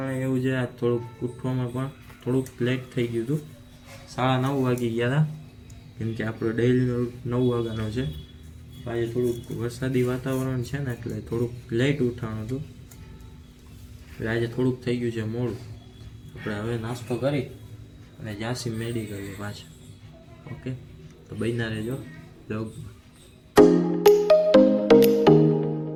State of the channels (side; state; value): both; identical; correlation 1.00